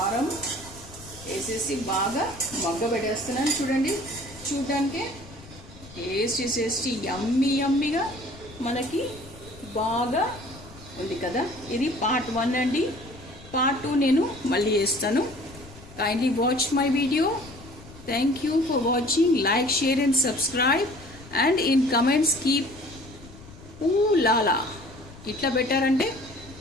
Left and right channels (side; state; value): left; noise; rumble, 19 dB below the sound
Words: వేసేసి బాగా మగ్గబెట్టేస్తున్నాను. చూడండి, చూడటానికి టేస్టీ యమ్మీగా మనకి బాగా ఉంది కదా. ఇది పార్ట్ 1 అండి. పార్ట్ 2 నేను మళ్ళీ వేస్తాను. Kindly watch my video. Thank you for watching. Like, share and subscribe and in comments keep లాలా ఇట్లా పెట్టారంటే